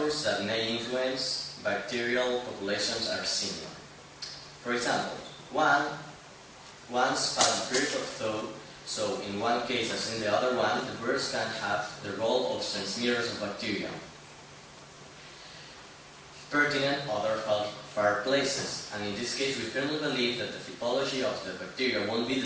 that may influence bacterial populations are similar. For example, once past the period of thaw, so in one case as in the other one, the birds can have the role of transmitters of bacteria. Pertinent other far places, and in this case we firmly believe that the typology of the bacteria won't be the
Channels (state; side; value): identical; both; correlation 1.00